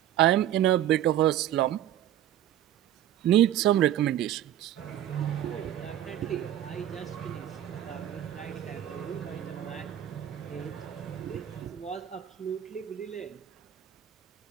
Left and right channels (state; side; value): quieter; left; 11.9 dB